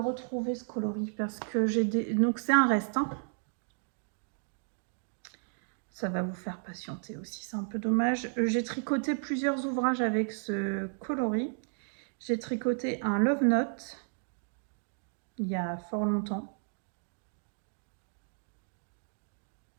ce coloris? Parce que j'ai des... Donc c'est un reste. Hein. Ça va vous faire patienter aussi, c'est un peu dommage. J'ai tricoté plusieurs ouvrages avec ce coloris. J'ai tricoté un Love Note il y a fort longtemps.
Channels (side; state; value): left; silent; 56 dB below the other